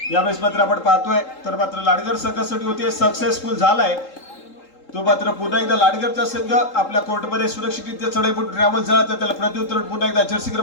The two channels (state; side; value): late; right; 3.8 ms